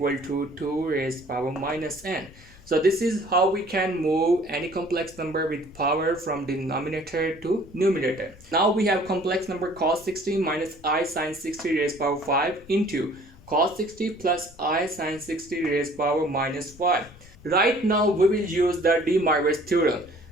to 2 raised power minus n. So this is how we can move any complex number with power from denominator to numerator. Now we have complex number cos 60 minus I sine 60 raised power 5 into cos 60 plus I sine 60 raised power minus 5. Right now we will use the Demoivre's theorem.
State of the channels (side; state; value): left; noise; rumble, 22 dB below the sound